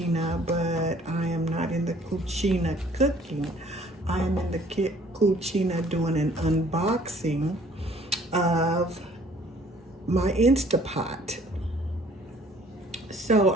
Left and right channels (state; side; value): normal; both; correlation 0.57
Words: but I am not in the cucina cooking. I am in the cucina doing an unboxing of my Instapot. So